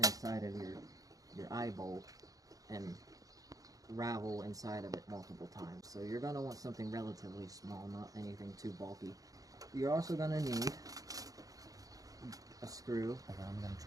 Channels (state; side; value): late; left; 0.17 ms